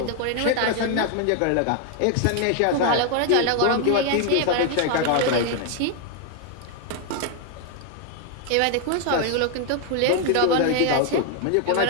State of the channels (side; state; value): both; different; correlation 0.01